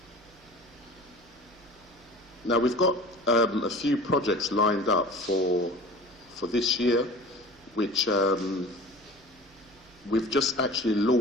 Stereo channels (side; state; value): both; normal; correlation 0.40